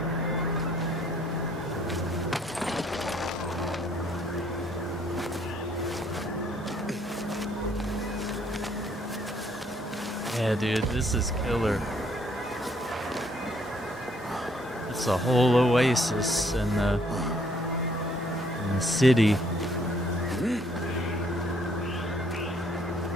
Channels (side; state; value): both; normal; correlation 0.66